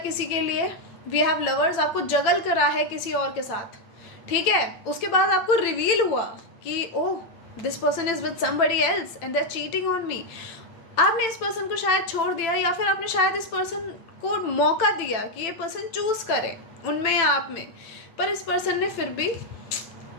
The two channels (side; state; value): right; late; 9.0 ms